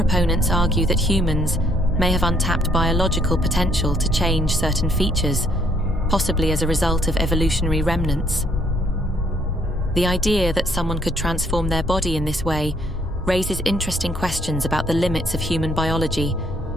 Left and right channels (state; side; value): normal; both; correlation 0.67